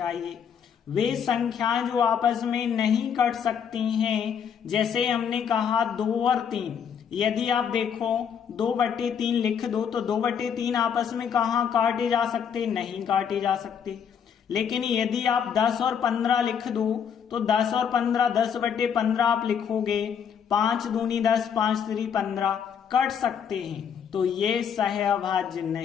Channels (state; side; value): quieter; right; 7.7 dB